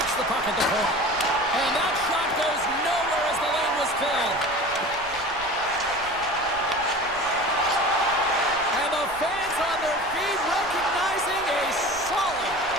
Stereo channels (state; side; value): noise; right; rumble, 19 dB below the sound